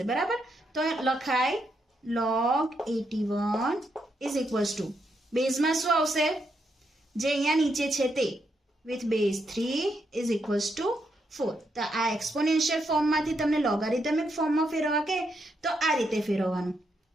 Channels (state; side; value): normal; both; correlation 0.80